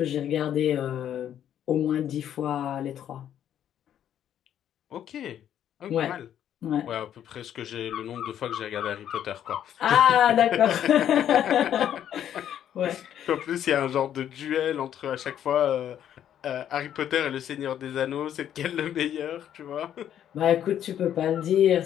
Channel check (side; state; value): right; quieter; 10.3 dB